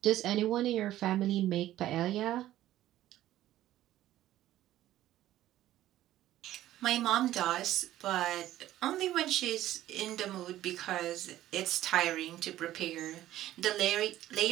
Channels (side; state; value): left; quieter; 13.9 dB